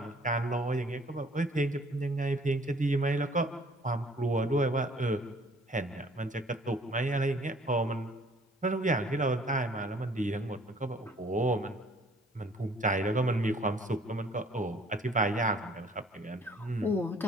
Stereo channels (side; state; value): both; normal; correlation 0.56